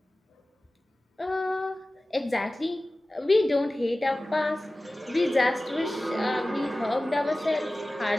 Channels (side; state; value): both; normal; correlation 0.97